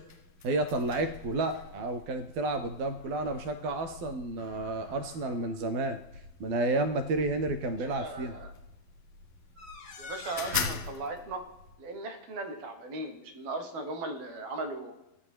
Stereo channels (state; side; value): late; left; 12 ms